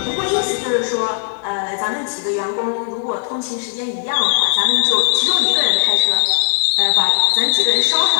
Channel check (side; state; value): right; silent; 68 dB below the other